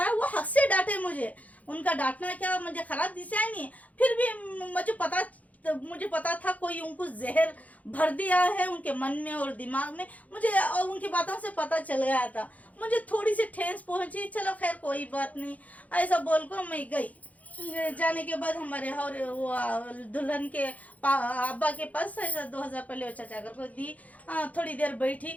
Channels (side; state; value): right; late; 0.072 ms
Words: आया, वो हक से डांटे मुझे। उनका डांटना क्या मुझे खराब दिशा नहीं, फिर भी मुझे पता था कोई उनको जहर भर दिया है उनके मन में और दिमाग में। मुझे और उनकी बातों से पता चल गया था, मुझे थोड़ी सी ठेस पहुंची। चलो खैर कोई बात नहीं, ऐसा बोल कर मैं गई। जाने के बाद हमारे और वो दुल्हन के अब्बा के पास ऐसा 2000 पहले चाचा घर को दी। थोड़ी देर